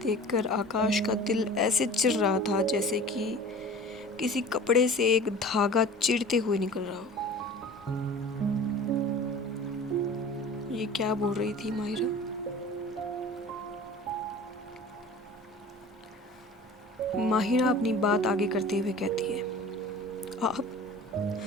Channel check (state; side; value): normal; both; correlation 0.41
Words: आकाश का दिल ऐसे चिर रहा था जैसे कि किसी कपड़े से एक धागा चिरते हुए निकल रहा हो। ये क्या बोल रही थी माहिरा? माहिरा अपनी बात आगे करते हुए कहती है, आप